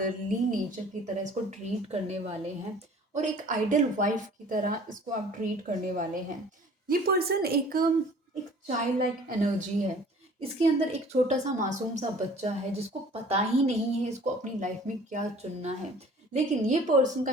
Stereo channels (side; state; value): both; normal; correlation 0.50